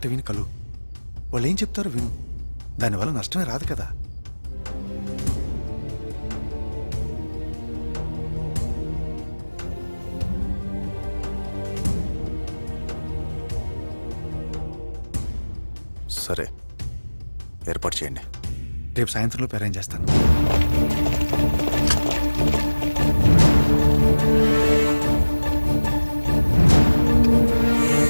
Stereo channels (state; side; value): inverted; both; correlation -1.00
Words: విని కలు. వాళ్ళు ఏం చెప్తారో విను. దానివల్ల నష్టమే రాదు కదా. సరే, ఏర్పాటు చేయండి. రేపు సాయంత్రంలోపు అరేంజ్ చేస్తాను.